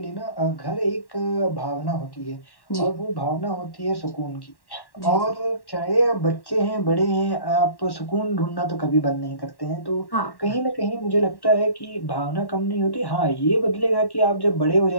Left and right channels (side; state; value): right; late; 1.1 ms